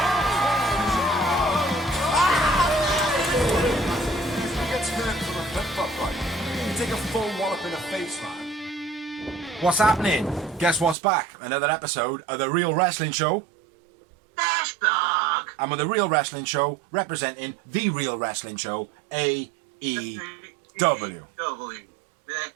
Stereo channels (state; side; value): drops out; left; at 11.0 s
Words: Who gets hurt from a flip-flop fight? You take a full wallop in the face, man. What's happening? Guess what's back? Another episode of The Real Wrestling Show. Dash Dog! And with The Real Wrestling Show representing The Real Wrestling Show, AEW. The